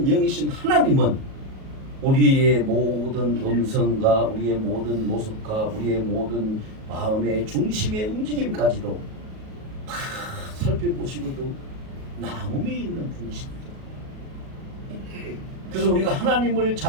영이신 하나님은 우리의 모든 음성과 우리의 모든 모습과 우리의 모든 마음의 중심의 움직임까지도 다 살펴보시고도 남음이 있는 분이십니다. 그래서 우리가 하나님을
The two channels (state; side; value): late; left; 37 ms